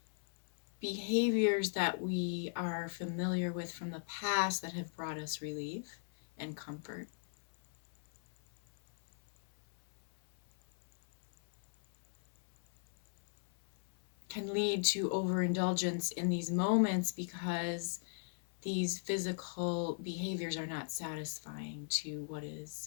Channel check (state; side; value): silent; right; 53 dB below the other